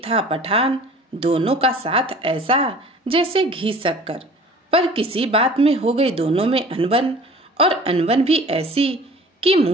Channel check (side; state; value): both; normal; correlation 0.46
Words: था पठान। दोनों का साथ ऐसा जैसे घी शक्कर। पर किसी बात में हो गई दोनों में अनबन, और अनबन भी ऐसी कि